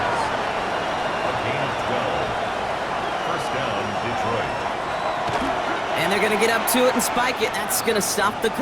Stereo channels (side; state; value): both; identical; correlation 1.00